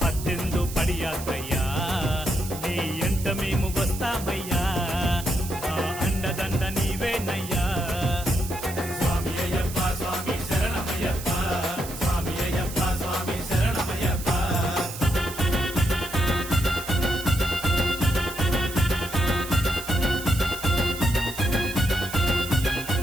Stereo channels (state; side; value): noise; right; hiss, 11 dB below the sound